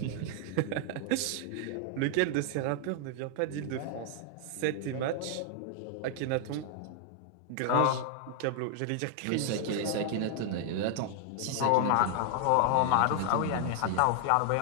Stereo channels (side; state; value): both; different; correlation 0.00